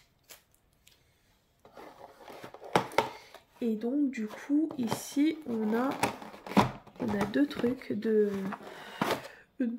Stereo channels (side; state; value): both; identical; correlation 1.00